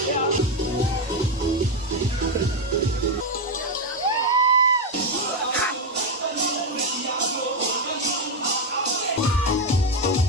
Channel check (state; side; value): normal; both; correlation 0.07